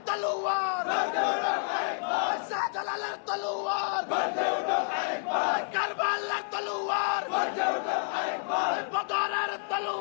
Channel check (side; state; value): right; silent; 58 dB below the other